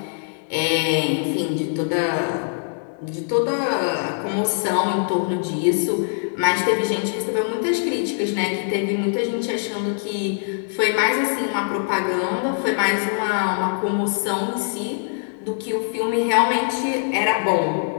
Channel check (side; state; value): right; silent; digital silence